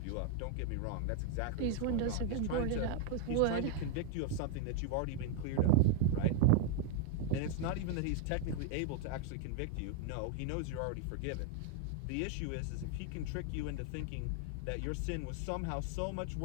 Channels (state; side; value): different; both; correlation 0.00